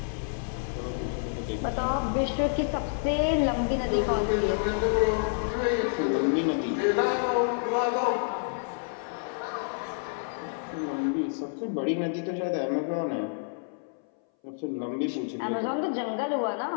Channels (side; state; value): right; silent; 59 dB below the other